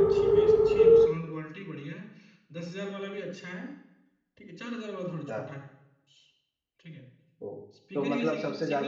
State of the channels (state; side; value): identical; both; correlation 1.00